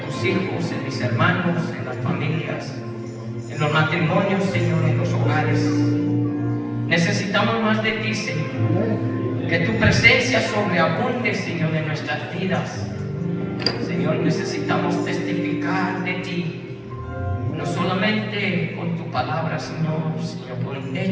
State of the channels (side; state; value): both; identical; correlation 1.00